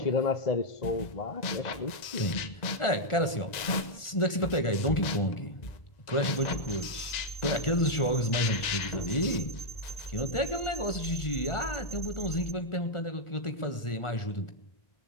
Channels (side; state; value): right; late; 1.4 ms